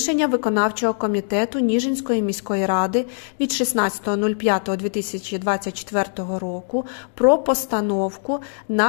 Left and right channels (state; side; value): silent; right; digital silence